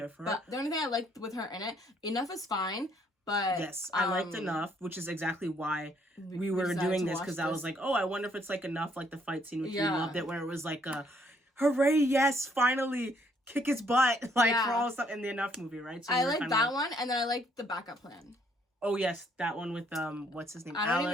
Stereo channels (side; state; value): both; normal; correlation 0.67